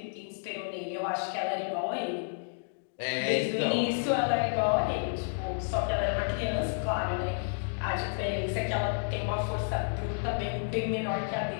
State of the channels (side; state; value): right; silent; digital silence